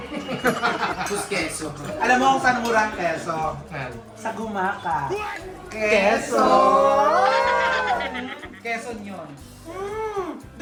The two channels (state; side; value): identical; both; correlation 1.00